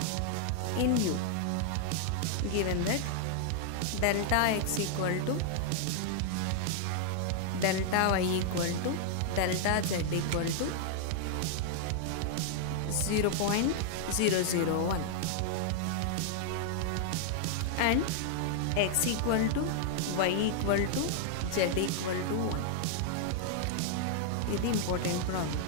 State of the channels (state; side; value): different; both; correlation -0.01